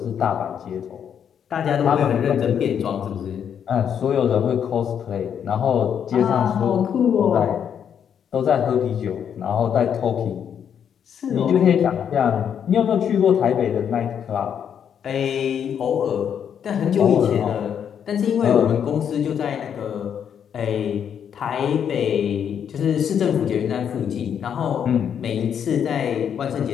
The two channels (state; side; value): quieter; right; 8.3 dB